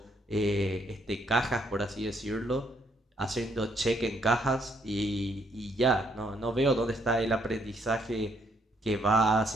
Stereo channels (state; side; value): normal; both; correlation 0.71